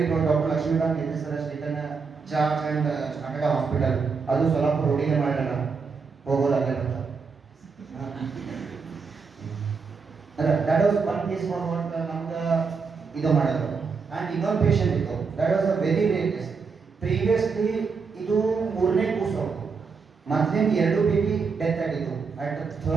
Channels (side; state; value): left; quieter; 5.1 dB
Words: proud. Doctor Lakshmikant S sir taken charge and started a hospital. ಅದು ಸೊಲ್ಲಾಪುರ ರೋಡಿಗೆ ಮಾಡೋಣ ಹೋಗೋದಾಗಲ್ಲ. That was one case for what ನಮ್ಗೆ ಇದು ಮಾಡೋದು. And ಇನ್ನೊಂದು patient ಇತ್ತು, that was a very rare case. Previously ಇದು 3ನೇ ಕೂಸು, ಮೊದಲಿಂದ 2 ಬೇಬಿ ಡೆತ್ ಆಗಿತ್ತು at